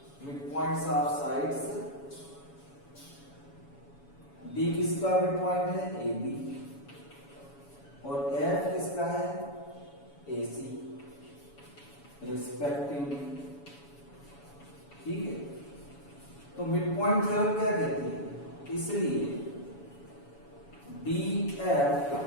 sides, D किसका मिड पॉइंट है, AB, और F किसका है, AC रिस्पेक्टिवली। ठीक है, तो मिड पॉइंट थ्योरम क्या कहती है, इसलिए DF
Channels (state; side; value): late; right; 7.1 ms